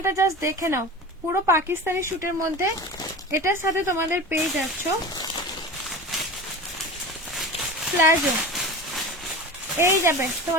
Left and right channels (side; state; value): both; normal; correlation 0.31